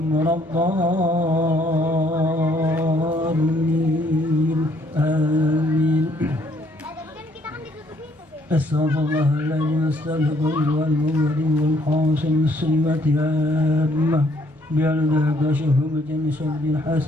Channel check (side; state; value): both; normal; correlation 0.66